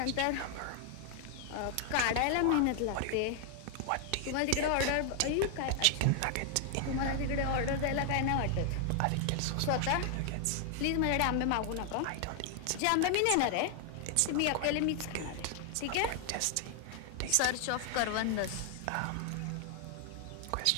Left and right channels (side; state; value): both; different; correlation 0.00